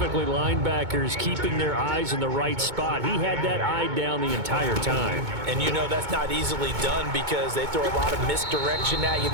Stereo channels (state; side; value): late; left; 2.2 ms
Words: linebackers, keeping their eyes in the right spot. He had that eye down the entire time. And you know that's not easily done because they throw a lot of misdirection at you.